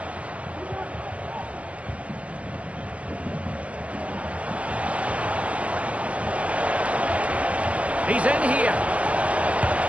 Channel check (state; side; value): late; left; 0.066 ms